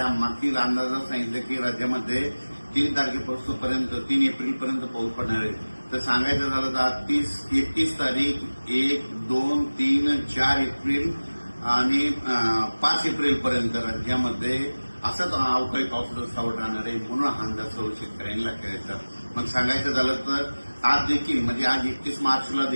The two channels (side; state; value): both; inverted; correlation -1.00